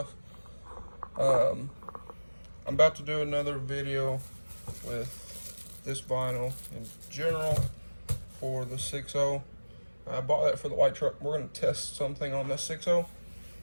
I'm about to do another video with this vinyl in general for the 6.0. I bought that for the white truck. We're going to test something on this 6.0.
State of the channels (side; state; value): both; inverted; correlation -1.00